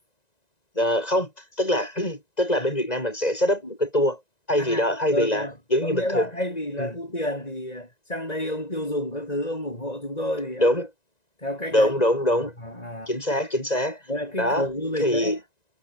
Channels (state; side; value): late; right; 1.9 ms